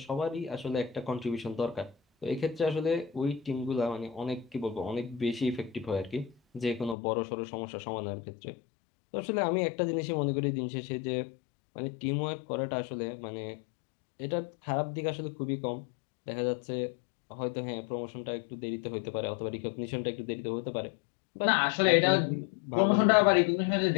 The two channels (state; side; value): drops out; right; at 7.0 s